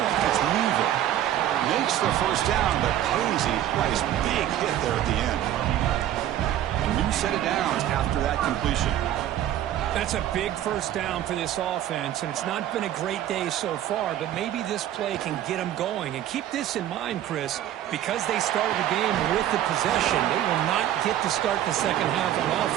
It's Weaver. Makes the first down, but pays a price. Big hit there at the end. A new set of downs after that completion. That's a big first down for this offense, and it's not been a great day so far, but maybe this play can get them going. And keep this in mind, Chris, because they started the game with the possession, they will not get to start the second half on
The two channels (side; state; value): left; quieter; 11.9 dB